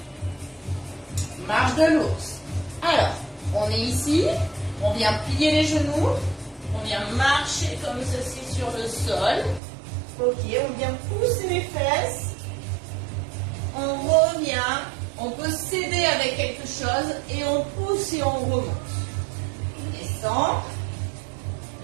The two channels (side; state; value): left; drops out; at 9.6 s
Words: Marche de l'ours. Alors, on est ici. On vient plier les genoux. On vient marcher comme ceci sur le sol. Ok, on vient pousser les fesses. On revient. On peut s'aider avec quelque chose et on pousse et on remonte. On descend.